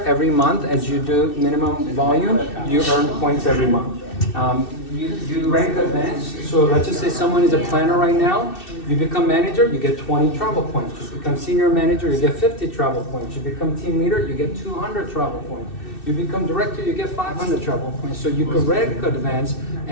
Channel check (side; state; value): right; late; 2.6 ms